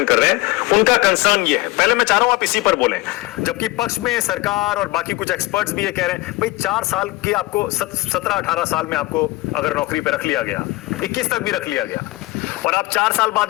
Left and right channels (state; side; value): quieter; right; 21.4 dB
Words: कर रहे हैं उनका कंसर्न ये है। पहले मैं चाह रहा हूं आप इसी पर बोलें, जबकि पक्ष में सरकार और बाकी कुछ एक्सपर्ट्स भी ये कह रहे हैं भाई 4 साल की आपको 17-18 साल में आपको अगर नौकरी पे रख लिया गया, 21 तक भी रख लिया गया, और आप 4 साल